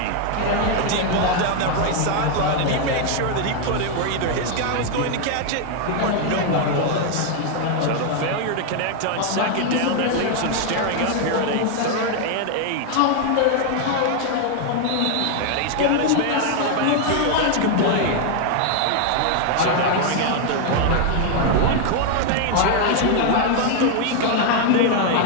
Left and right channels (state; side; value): different; both; correlation 0.00